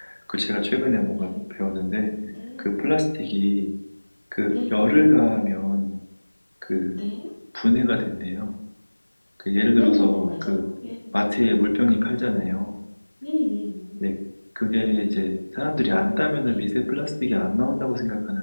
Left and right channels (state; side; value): inverted; both; correlation -1.00